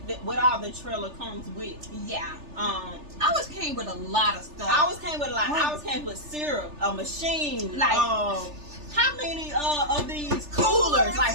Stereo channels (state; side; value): late; left; 3.3 ms